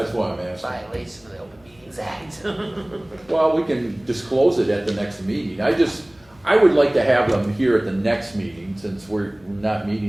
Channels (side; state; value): left; noise; hum, 29 dB below the sound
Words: why I'm asking. Violation of the Open Meetings Act. Well, we can disclose it at the next meeting. I would like to have them here at the next meeting, since we're not